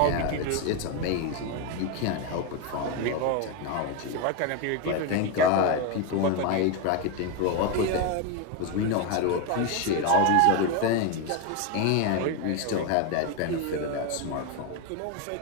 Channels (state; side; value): different; both; correlation 0.02